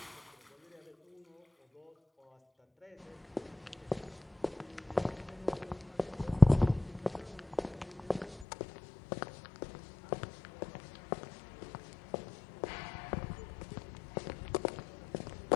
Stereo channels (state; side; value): drops out; right; at 8.5 s